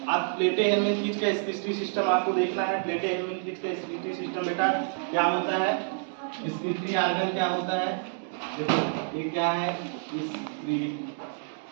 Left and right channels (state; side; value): silent; left; digital silence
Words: अब प्लेटे हेलमनथीज का स्क्रीटरी सिस्टम आपको देखना है। प्लेटे हेलमनथीज का स्क्रीटरी सिस्टम बेटा क्या होता है? स्क्रीटरी आर्गन क्या होता है? देखो ये क्या है? स्क्रीटरी